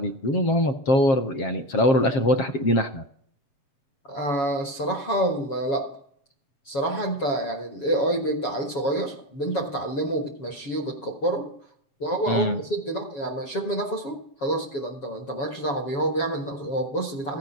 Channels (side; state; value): right; late; 7.2 ms